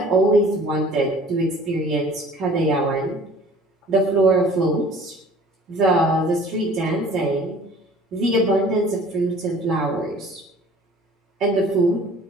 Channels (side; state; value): both; normal; correlation 0.50